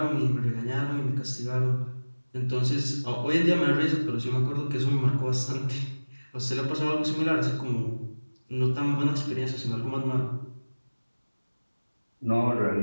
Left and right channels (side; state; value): both; inverted; correlation -1.00